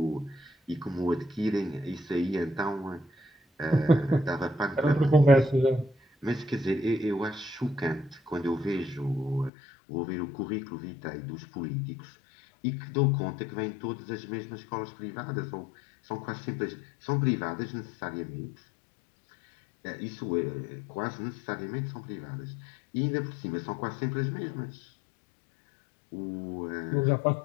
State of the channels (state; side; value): drops out; right; at 9.5 s